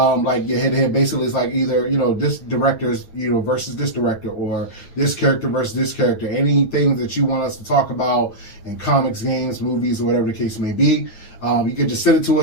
your head-to-head. Basically, it's like either, this director's, versus this director, or this character versus this character. Anything that you want us to talk about in comics, games, movies, or whatever the case may be. You can just send it to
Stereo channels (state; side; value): late; right; 9.2 ms